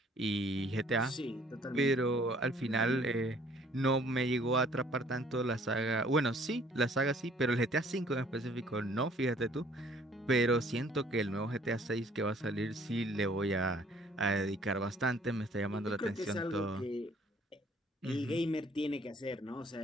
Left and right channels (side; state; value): both; normal; correlation 0.58